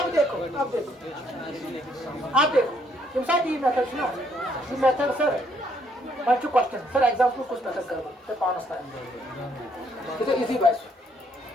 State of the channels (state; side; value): normal; both; correlation 0.69